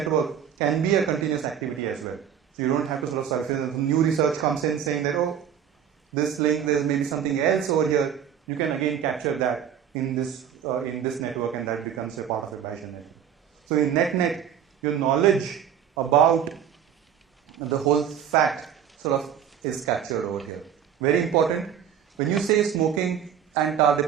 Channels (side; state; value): left; quieter; 8.8 dB